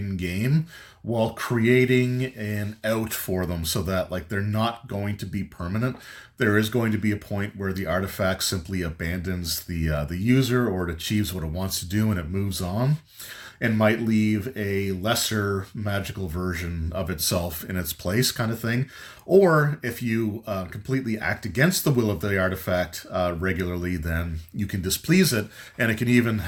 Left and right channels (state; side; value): identical; both; correlation 1.00